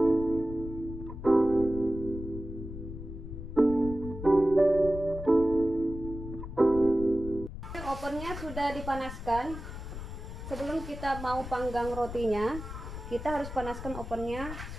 Ovennya sudah dipanaskan. Sebelum kita mau panggang rotinya, kita harus panaskan ovennya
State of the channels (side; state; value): left; noise; rumble, 9 dB below the sound